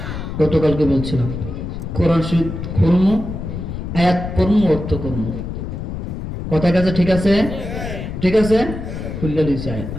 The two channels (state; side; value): noise; left; rumble, 6 dB below the sound